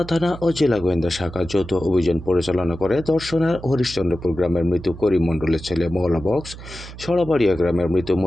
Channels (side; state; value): right; noise; hum, 14 dB below the sound